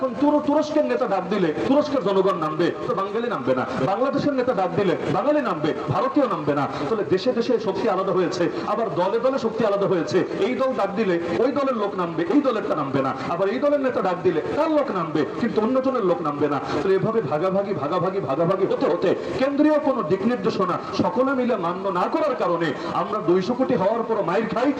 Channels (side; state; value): both; identical; correlation 1.00